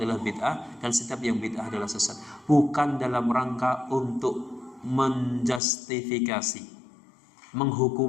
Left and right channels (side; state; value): right; drops out; at 5.6 s